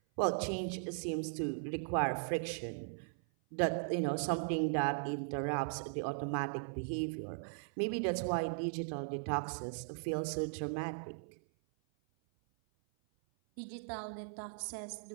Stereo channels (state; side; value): silent; left; 52 dB below the other